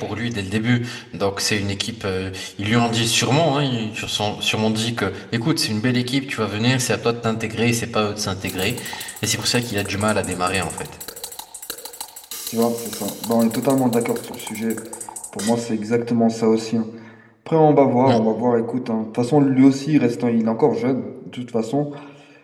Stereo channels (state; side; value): identical; both; correlation 1.00